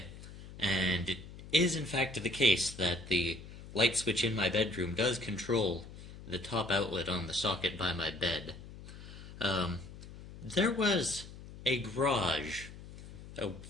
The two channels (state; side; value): noise; left; hum, 15 dB below the sound